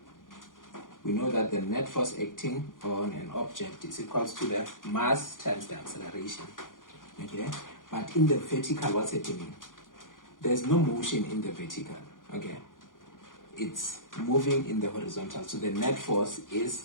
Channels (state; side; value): late; right; 0.89 ms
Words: We know that the net force acting on an object is equal to the mass times the acceleration. Okay? But in the vertical, what's happening? There's no motion in the vertical. Okay? It's moving in the horizontal. So the net force is